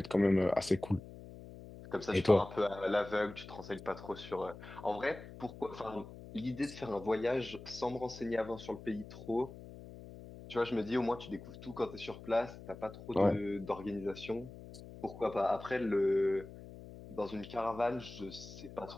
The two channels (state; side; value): noise; left; hum, 15 dB below the sound